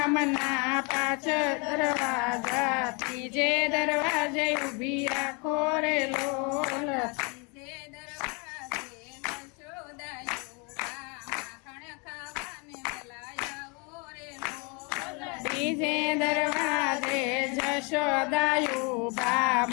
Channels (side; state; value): right; quieter; 32.6 dB